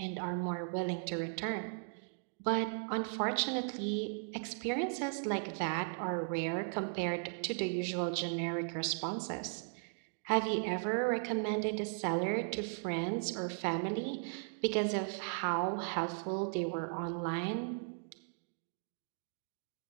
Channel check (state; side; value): silent; left; digital silence